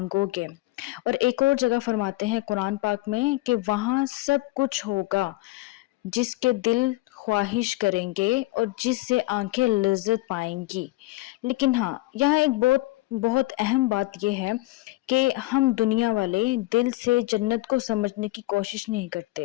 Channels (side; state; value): right; quieter; 19.2 dB